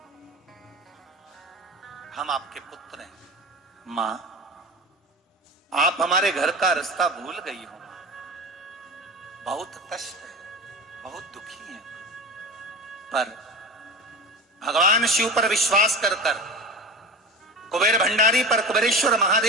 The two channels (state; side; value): normal; both; correlation 0.31